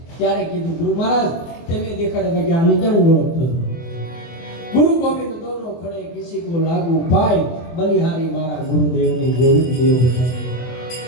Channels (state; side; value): late; right; 24 ms